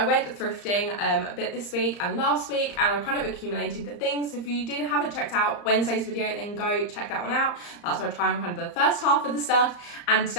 went thrifting a bit this week and last week, and I kind of accumulated the things. So if you haven't checked out Wednesday's video, then go check that one out. That's where I try on kind of the first half of the stuff, and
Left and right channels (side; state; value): right; late; 34 ms